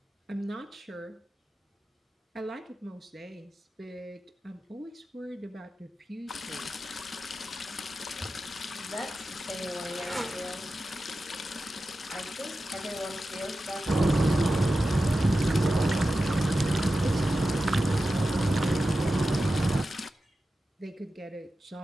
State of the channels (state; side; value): normal; both; correlation 0.92